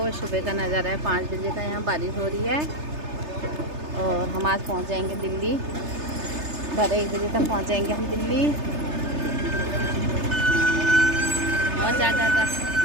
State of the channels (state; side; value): late; left; 3.3 ms